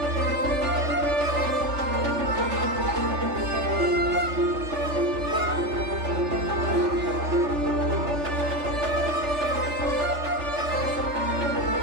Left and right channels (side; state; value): left; late; 3.4 ms